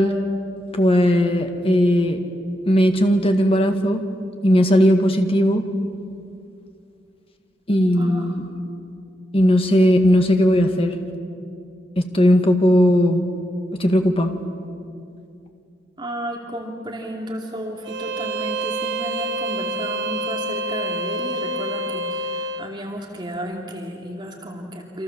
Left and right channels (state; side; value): normal; both; correlation 0.80